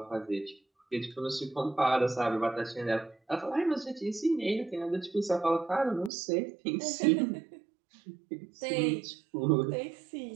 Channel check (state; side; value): drops out; left; at 6.1 s